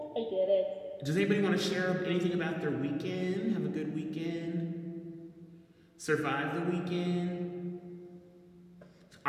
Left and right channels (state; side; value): identical; both; correlation 1.00